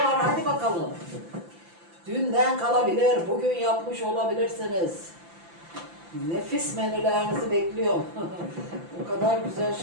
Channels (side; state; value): left; late; 5.8 ms